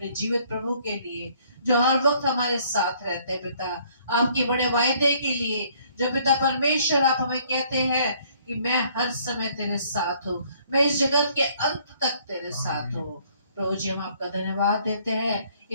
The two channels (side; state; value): both; inverted; correlation -0.62